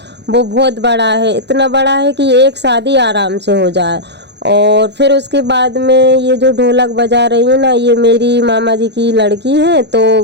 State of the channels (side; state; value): left; late; 0.50 ms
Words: वो बहुत बड़ा है, इतना बड़ा है कि एक शादी आराम से हो जाए। और फिर उसके बाद में ये जो ढोलक बजा रही है ना, ये मेरी मामा जी की लड़की है। तो